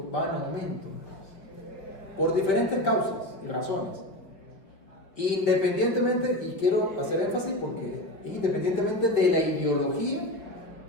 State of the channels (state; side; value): late; right; 5.3 ms